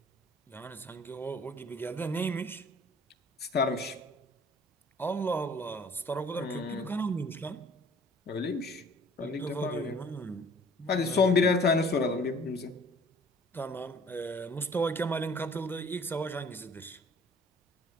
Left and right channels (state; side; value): normal; both; correlation 0.52